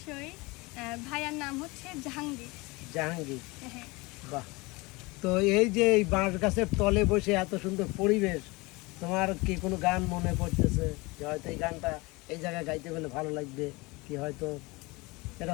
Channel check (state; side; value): quieter; right; 24.3 dB